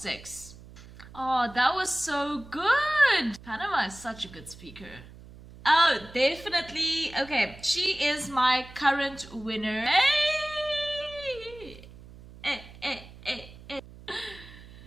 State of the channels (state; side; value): noise; right; hum, 19 dB below the sound